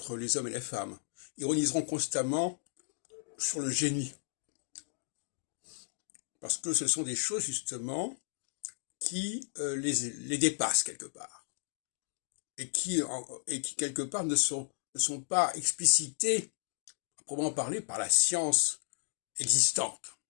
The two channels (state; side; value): silent; right; digital silence